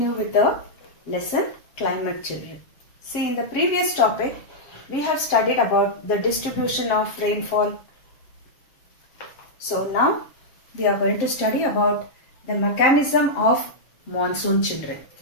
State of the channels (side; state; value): right; late; 7.3 ms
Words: with the lesson climate children. See, in the previous topic we have studied about the distribution of rainfall. So now we are going to study about the mechanism of monsoon children.